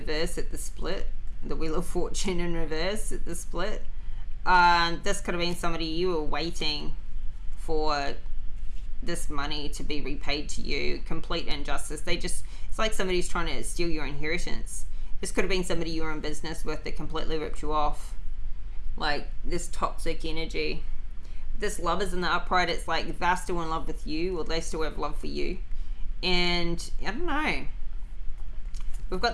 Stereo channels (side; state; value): both; identical; correlation 1.00